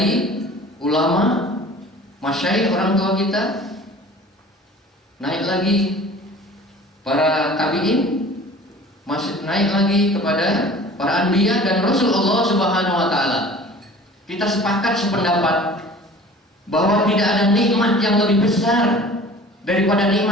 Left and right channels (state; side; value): normal; both; correlation 0.45